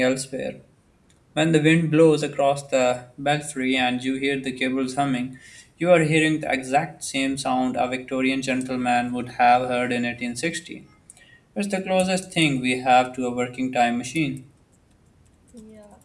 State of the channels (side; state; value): both; identical; correlation 1.00